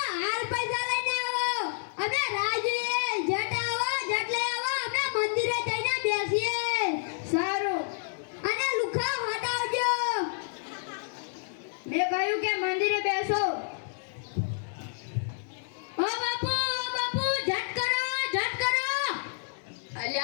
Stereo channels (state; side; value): silent; right; digital silence